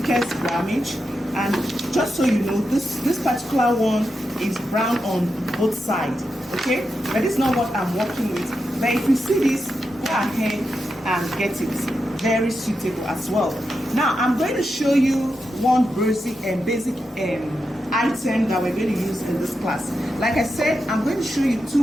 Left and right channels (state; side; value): normal; both; correlation 0.87